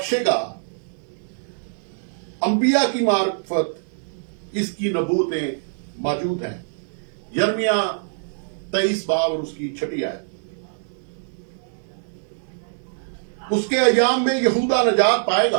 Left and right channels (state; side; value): silent; left; digital silence